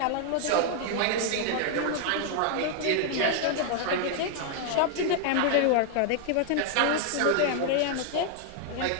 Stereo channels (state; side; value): different; both; correlation 0.00